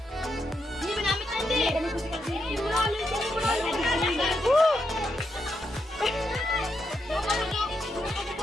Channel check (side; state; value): both; normal; correlation 0.82